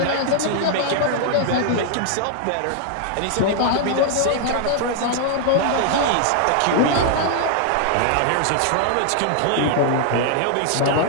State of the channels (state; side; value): different; both; correlation 0.00